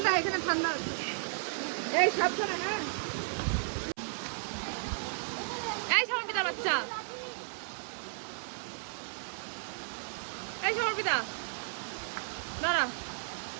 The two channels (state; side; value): silent; left; 55 dB below the other